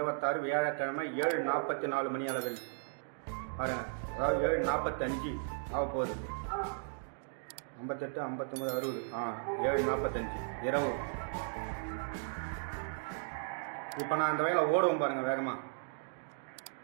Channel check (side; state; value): left; silent; digital silence